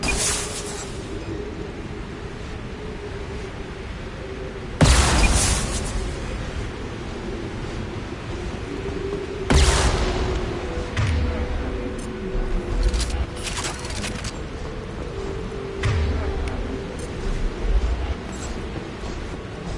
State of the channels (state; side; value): identical; both; correlation 1.00